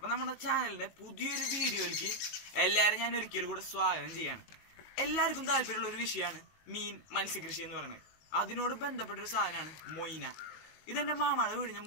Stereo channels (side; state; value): right; late; 19 ms